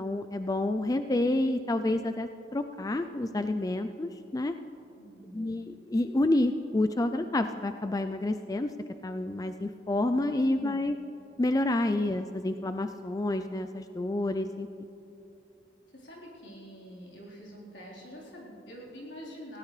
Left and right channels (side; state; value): both; normal; correlation 0.83